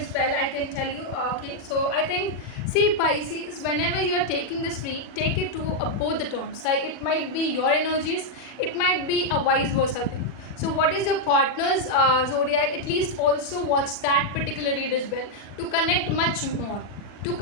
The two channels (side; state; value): right; late; 40 ms